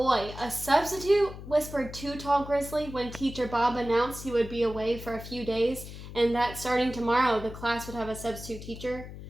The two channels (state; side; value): noise; left; hum, 12 dB below the sound